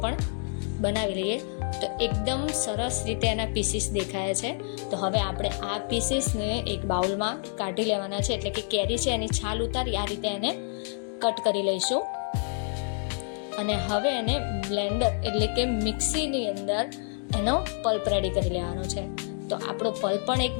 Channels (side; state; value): right; silent; 59 dB below the other